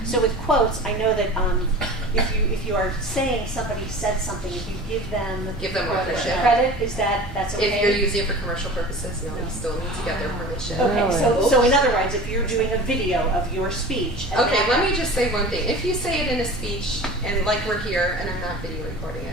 so with quotes, I know that if you are saying somebody said something, if you give them credit, that's okay? If you're using it for commercial purposes, no, you still need to get their permission. Okay, so in other words, if you're doing a video of your speech. Okay, let me just say one thing. If you say it in a speech, and like we're here, and I'm not video recording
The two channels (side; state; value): both; normal; correlation 0.38